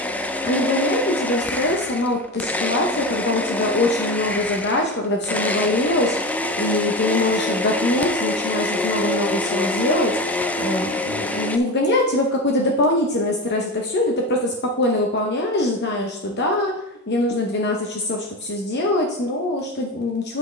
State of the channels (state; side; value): normal; both; correlation 0.23